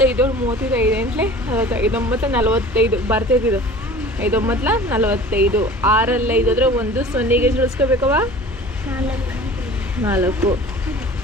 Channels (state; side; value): normal; both; correlation 0.42